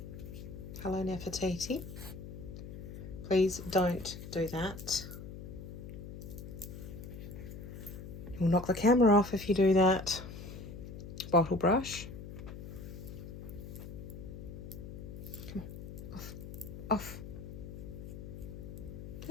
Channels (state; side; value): noise; left; hum, 10 dB below the sound